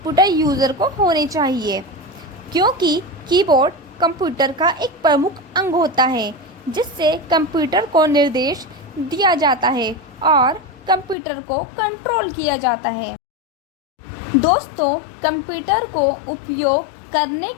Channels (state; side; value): drops out; right; at 11.2 s